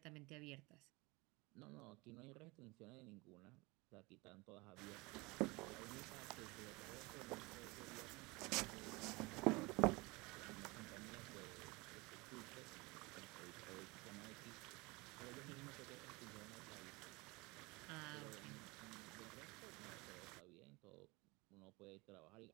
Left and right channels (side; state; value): left; quieter; 24.7 dB